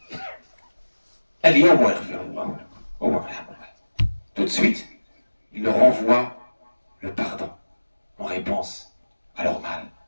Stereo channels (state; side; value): inverted; both; correlation -1.00